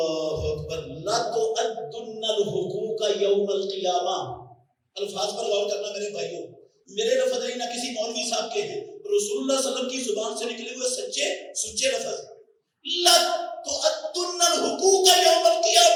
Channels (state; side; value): identical; both; correlation 1.00